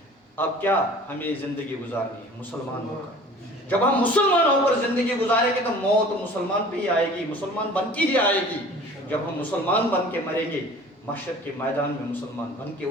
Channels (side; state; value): both; normal; correlation 0.46